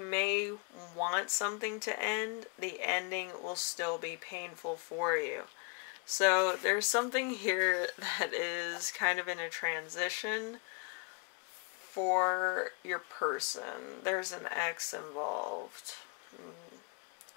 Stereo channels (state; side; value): quieter; right; 33.8 dB